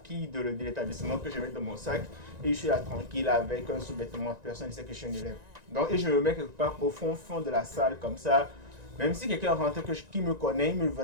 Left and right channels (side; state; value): left; late; 1.9 ms